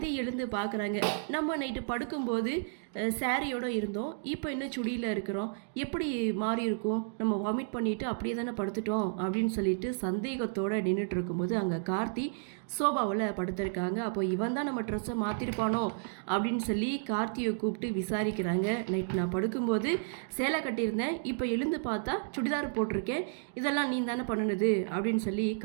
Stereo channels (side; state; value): left; silent; digital silence